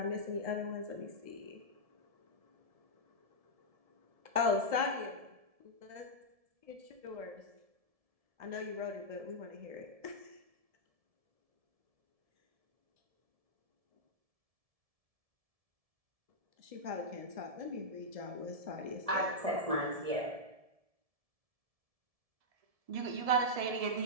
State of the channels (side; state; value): left; late; 1.7 ms